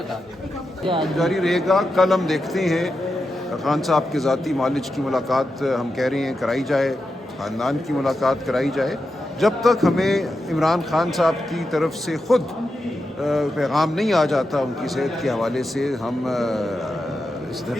دیں۔ جاری رہے گا۔ کل ہم دیکھتے ہیں خان صاحب کے ذاتی معالج کی ملاقات ہم کہہ رہے ہیں کرائی جائے، خاندان کی ملاقات کرائی جائے۔ جب تک ہمیں عمران خان صاحب کی طرف سے خود پیغام نہیں آ جاتا ان کی صحت کے حوالے سے، ہم اس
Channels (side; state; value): both; normal; correlation 0.88